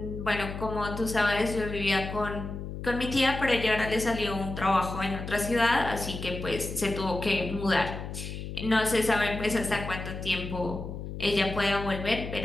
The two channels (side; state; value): left; noise; hum, 8 dB below the sound